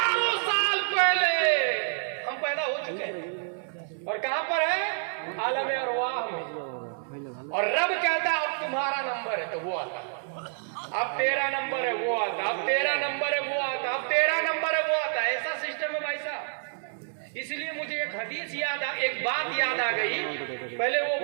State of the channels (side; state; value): left; silent; digital silence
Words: سال پہلے ہم پیدا ہو چکے ہیں، اور کہاں پر ہے؟ عالم ارواح میں۔ اور رب کہتا ہے اب تمہارا نمبر ہے، تو وہ آتا، اب تیرا نمبر ہے وہ آتا، اب تیرا نمبر ہے وہ آتا، اب تیرا نمبر ہے وہ آتا۔ ایسا سسٹم ہے بھائی صاحب۔ اس لیے مجھے ایک حدیث ایک بات یاد آ گئی، پہلے وہ